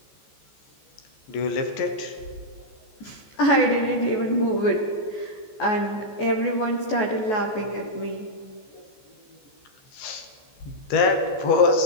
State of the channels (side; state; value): right; late; 14 ms